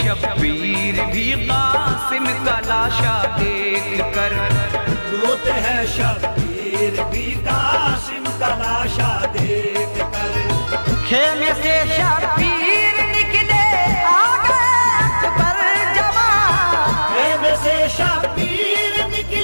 भी कासिम का लाशा देख कर, रोते हैं शब्बीर भी कासिम का लाशा देख कर। खेमे से शब्बीर निकले आ गए अकबर जवान, खेमे से शब्बीर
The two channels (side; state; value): both; inverted; correlation -1.00